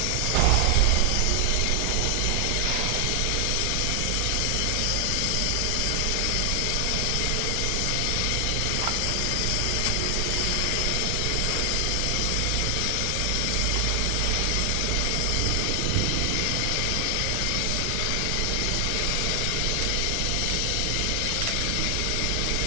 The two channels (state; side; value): different; both; correlation 0.00